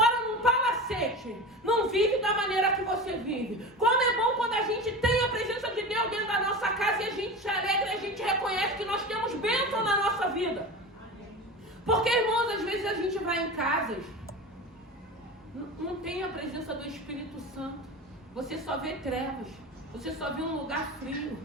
num palacete não vivem da maneira que você vive. Como é bom quando a gente tem a presença de Deus dentro da nossa casa e a gente se alegra e a gente reconhece que nós temos bênção na nossa vida. Porque, irmãos, às vezes a gente vai em casas, não tem a presença do Espírito Santo. Você só vê trevas. Você só vê um lugar frio.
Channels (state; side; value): normal; both; correlation 0.29